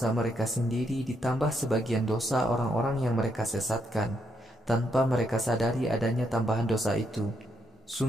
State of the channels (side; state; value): both; normal; correlation 0.78